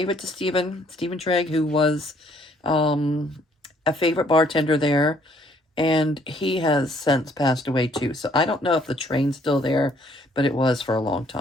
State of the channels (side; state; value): both; normal; correlation 0.64